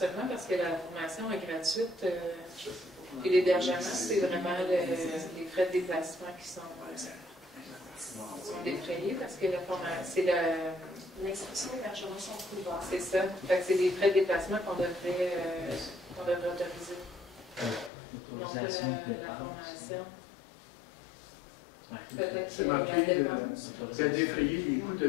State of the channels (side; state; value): right; drops out; at 17.9 s